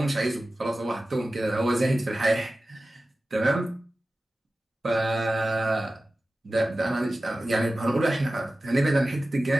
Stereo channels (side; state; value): both; normal; correlation 0.95